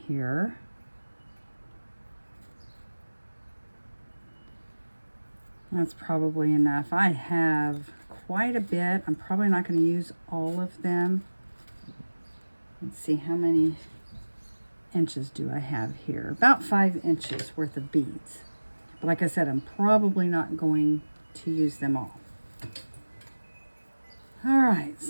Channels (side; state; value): both; inverted; correlation -1.00